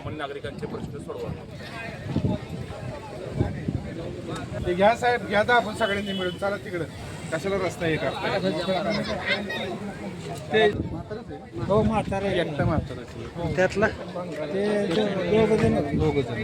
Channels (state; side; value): identical; both; correlation 1.00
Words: नागरिकांचे प्रश्न सोडवा. ते घ्या साहेब, घ्या तर आपण सगळ्यांनी मिळून चला तिकडं. कशाला रस्ता हे करता ते हो म्हातारा एकटा म्हातारा त्यातला ते दोघ